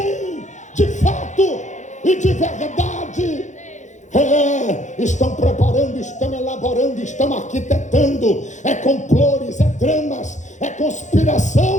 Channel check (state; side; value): late; right; 0.35 ms